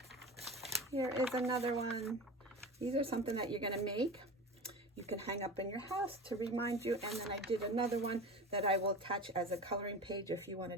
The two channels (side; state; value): both; normal; correlation 0.31